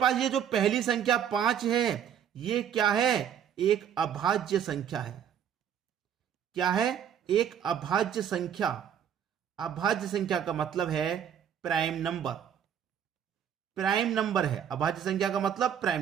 ये जो पहली संख्या 5 है ये क्या है, एक अभाज्य संख्या है। क्या है, एक अभाज्य संख्या। अभाज्य संख्या का मतलब है प्राइम नंबर, प्राइम नंबर है अभाज्य संख्या का मतलब प्राइम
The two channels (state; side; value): quieter; left; 8.8 dB